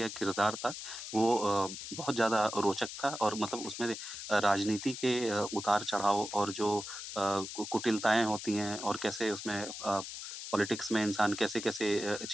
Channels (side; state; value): left; noise; hiss, 8 dB below the sound